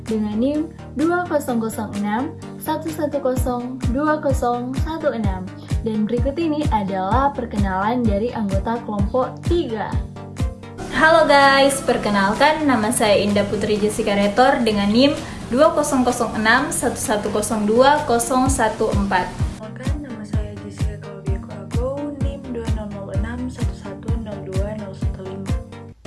dengan NIM 200611020116 dan berikut ini adalah perkenalan dari anggota kelompok 3. Halo guys, perkenalkan nama saya Indah Putri Jessica Retor dengan NIM 200611020114. Perkenalkan, nama saya Jessica Claudia Koago, NIM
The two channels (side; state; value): both; identical; correlation 1.00